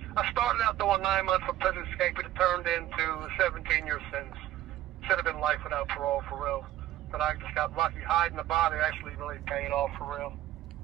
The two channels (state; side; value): quieter; left; 13.8 dB